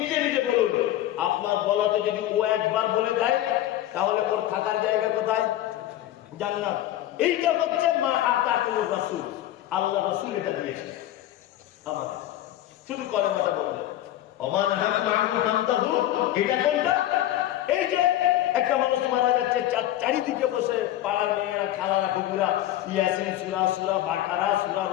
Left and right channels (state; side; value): quieter; right; 13.5 dB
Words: নিজে বলুন। আপনার বলাতে যদি ও একবার বলে দেয় তাহলে ওর থাকার জায়গা কোথায়? জান্নাত। এইটা হচ্ছে মা আতাকুমুর রাসূল, আল্লাহ রাসূল এটা দিয়েছে আমাদের। শুধু কলেমাটা বলবেন ওমান হাকুম আনহু ফান্তাহু, এটা কোনটা? এই যে একটা মানুষ মারা যাচ্ছে, চারিদিকে বসে পাড়ার মেয়েরা খালারা কুকুরা ইয়াসিন সূরা, সূরা বাকারা, সূরা